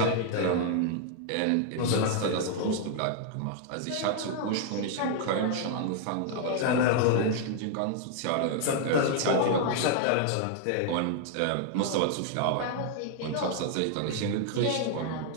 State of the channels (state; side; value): different; both; correlation 0.00